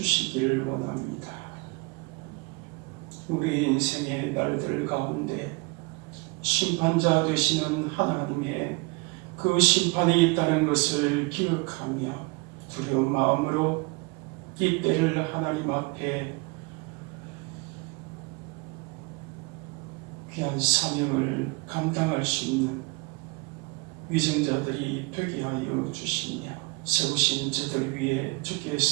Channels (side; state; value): left; quieter; 27.9 dB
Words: 원합니다. 우리의 인생의 날들 가운데 심판자 되시는 하나님의 그 심판이 있다는 것을 기억하며 두려운 마음으로 이 때를 하나님 앞에 귀한 사명을 감당할 수 있는 위정자들이 되게 하여 주시며 세우신 저들 위에